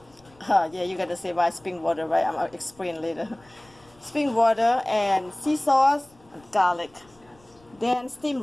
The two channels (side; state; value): left; noise; rumble, 30 dB below the sound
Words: Yeah, you gotta say why spring water, right? I'm gonna explain later. Spring water and sea sauce and garlic. Then steamed